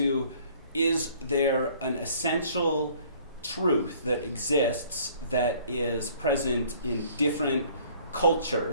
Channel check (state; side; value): inverted; both; correlation -0.56